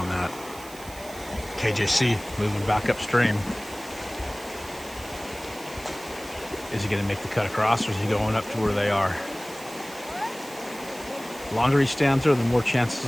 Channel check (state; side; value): noise; right; hiss, 17 dB below the sound